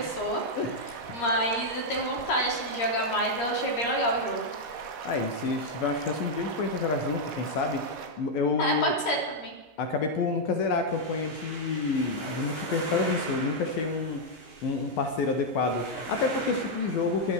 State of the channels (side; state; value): right; late; 13 ms